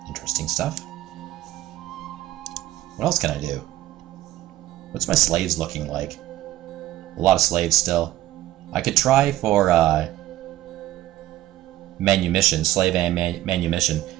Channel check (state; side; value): quieter; left; 14.9 dB